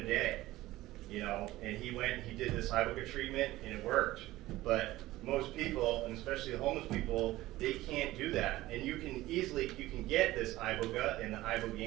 day, and he went and he did this iboga treatment, and it worked. But most people, and especially the homeless people, they can't do that. And you can get this iboga and the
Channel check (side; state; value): left; quieter; 17.0 dB